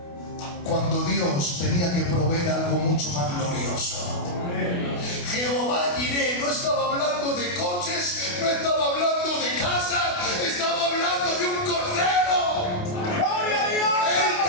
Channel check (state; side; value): late; right; 28 ms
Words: cuando Dios tenía que proveer algo mucho más glorioso. Jehová Jireh no estaba hablando de coches, no estaba hablando de casa, estaba hablando de un cordero. ¡Gloria a Dios! Él